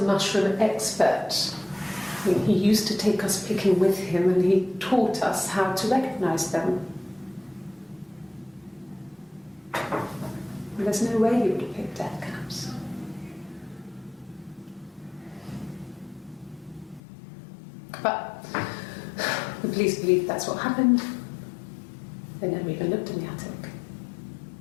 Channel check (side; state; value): right; drops out; at 17.0 s